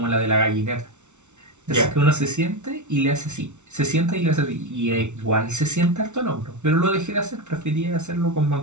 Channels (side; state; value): left; late; 0.83 ms